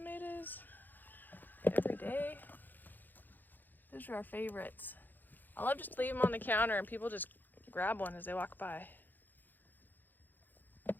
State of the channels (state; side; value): late; right; 0.088 ms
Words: every day. Those are our favorites. I love just to leave them on the counter and people just grab one as they walk by